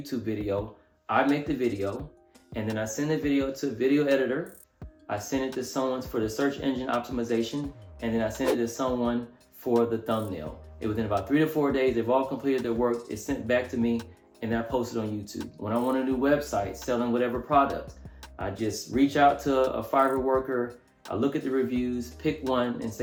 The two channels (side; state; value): both; identical; correlation 1.00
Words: video, I make the video and then I send the video to a video editor. I send it to someone for the search engine optimization, and then I send it to someone for the thumbnail. And within about 3 to 4 days, they've all completed their work. It's sent back to me and then I post it on YouTube. When I want a new website selling whatever product, I just reach out to a Fiverr worker. I look at the reviews, pick one and